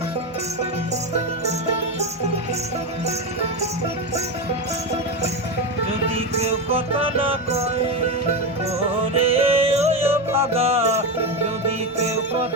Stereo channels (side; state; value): both; normal; correlation 0.14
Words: যদি কেউ কথা না কয় ওরে ওই ভাগা, যদি কেউ